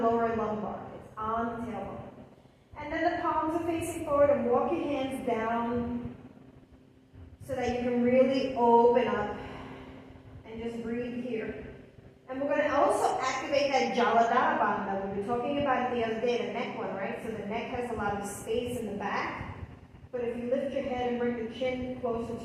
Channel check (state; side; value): identical; both; correlation 1.00